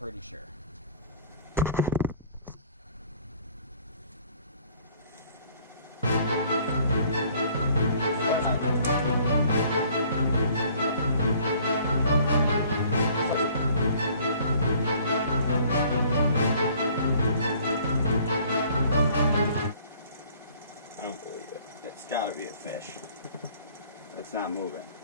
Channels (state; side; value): inverted; both; correlation -0.55